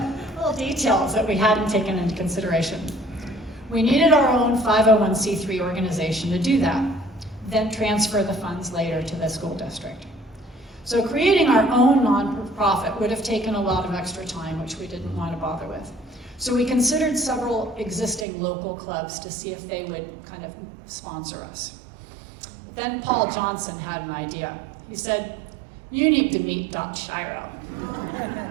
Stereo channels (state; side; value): drops out; left; at 18.2 s